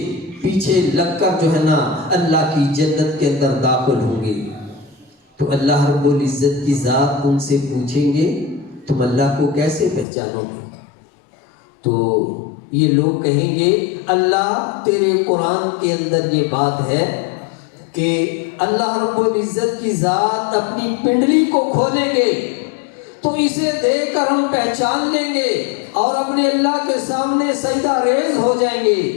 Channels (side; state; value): right; drops out; at 10.1 s